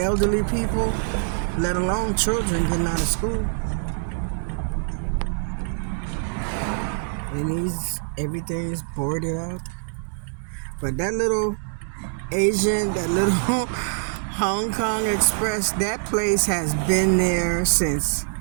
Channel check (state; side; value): silent; left; digital silence